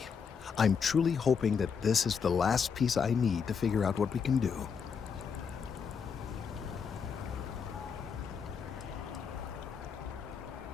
I'm truly hoping that this is the last piece I need to figure out what we can do.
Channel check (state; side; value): quieter; right; 6.3 dB